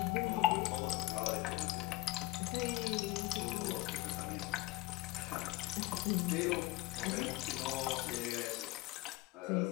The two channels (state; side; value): quieter; right; 19.4 dB